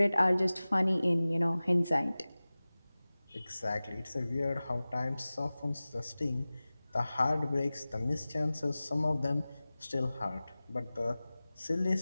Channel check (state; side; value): inverted; both; correlation -0.98